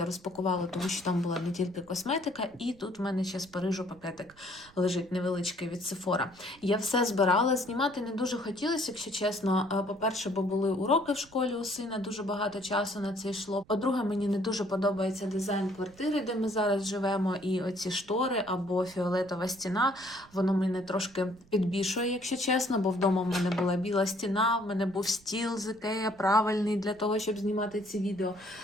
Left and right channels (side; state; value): right; noise; rumble, 26 dB below the sound